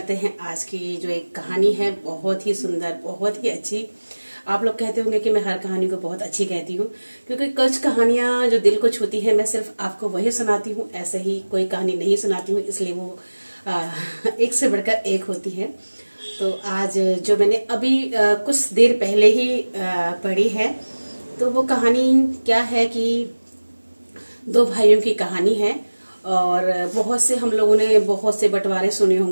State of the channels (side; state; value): both; inverted; correlation -1.00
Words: हैं आज की जो एक कहानी है, बहुत ही सुंदर, बहुत ही अच्छी। आप लोग कहते होंगे कि मैं हर कहानी को बहुत अच्छी कहती हूँ, क्योंकि कुछ कहानियां जो दिल को छूती है मैं सिर्फ आपको वही सुनाती हूँ, ऐसे ही कोई कहानी नहीं सुनाती हूँ, इसलिए वो एक से बढ़कर एक होती है। तो आज जो मैंने अभी कुछ देर पहले ही पढ़ी है, तो वो कहानी क्या है कि दो भाइयों की कहानी है। और बहुत से हम लोगों ने बहुत से बंटवारे सुने